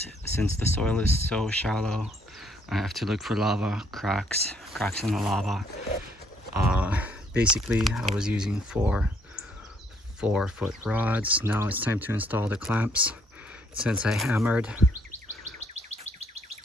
since the soil is so shallow, I have to look for lava cracks in the lava. Basically, I was using 4-foot rods. Now it's time to install the clamps. Since I hammered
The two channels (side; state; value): both; normal; correlation 0.67